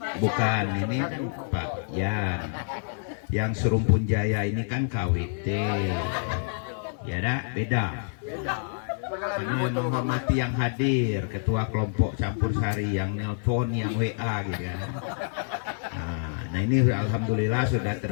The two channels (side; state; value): right; silent; digital silence